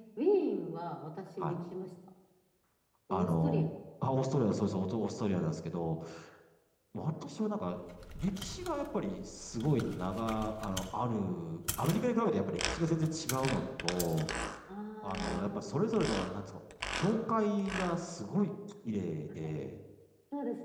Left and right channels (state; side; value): identical; both; correlation 1.00